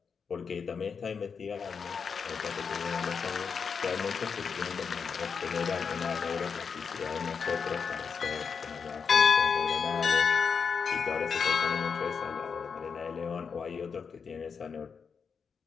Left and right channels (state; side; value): quieter; right; 6.0 dB